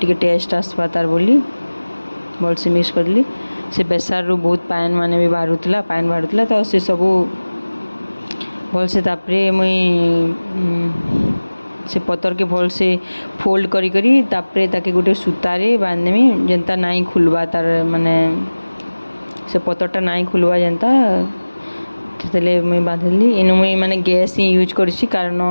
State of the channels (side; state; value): both; inverted; correlation -1.00